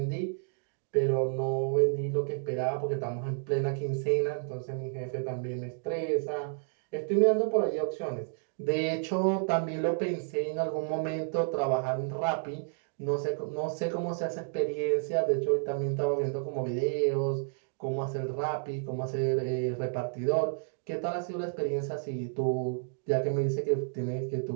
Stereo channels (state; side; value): silent; left; digital silence